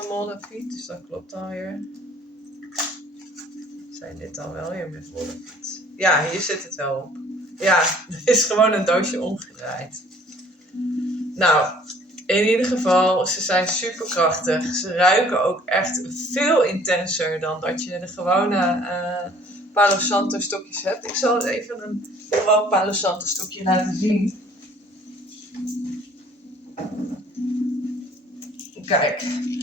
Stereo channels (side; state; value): both; normal; correlation 0.55